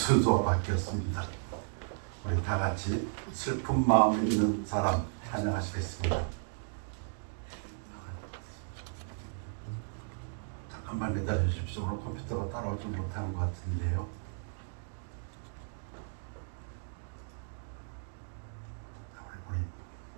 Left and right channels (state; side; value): silent; left; digital silence